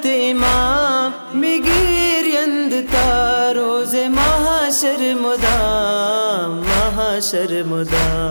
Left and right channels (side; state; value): both; inverted; correlation -1.00